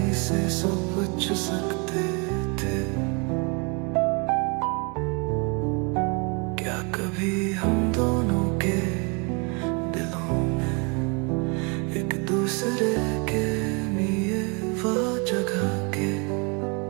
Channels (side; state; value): left; quieter; 32.7 dB